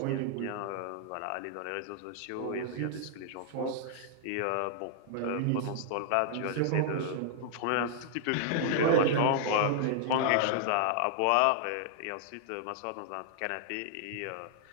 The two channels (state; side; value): different; both; correlation -0.01